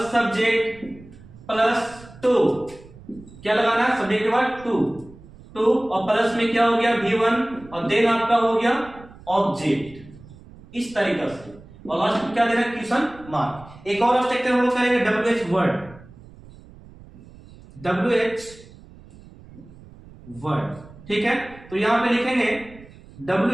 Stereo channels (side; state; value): right; noise; rumble, 21 dB below the sound